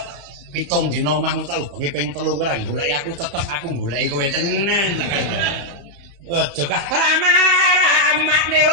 7 dina omahmu tak ubengi ping 3 kowe ora goleki aku tetep aku goleki kowe tenan tak kandhani aja rama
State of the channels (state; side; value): late; left; 35 ms